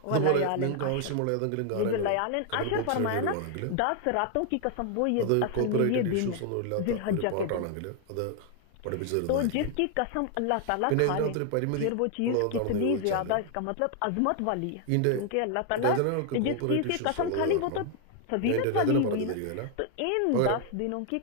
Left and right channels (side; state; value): both; different; correlation 0.00